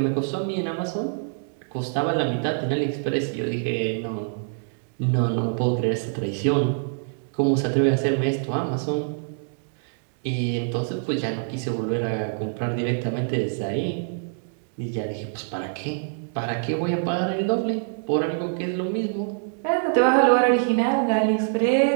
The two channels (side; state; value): left; silent; digital silence